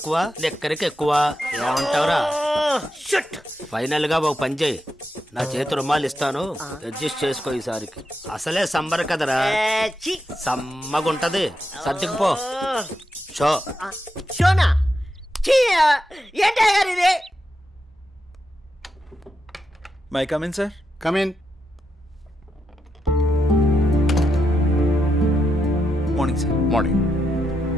లెక్కరికి ఎక్కువ. ఏమంటావురా? ఫైనల్ గా ఒక పని చేయి, నా చేతి రుమాలు ఇస్తాను, అడ్జస్ట్ చేసుకో ఈసారికి. అసలే సంబర కదరా, సమ్మగుంటది. సర్దుకుపో. షోనా ఏంటి అయ్యగారు ఇది? May come in sir. Come in. Morning sir. Morning.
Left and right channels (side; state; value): both; normal; correlation 0.85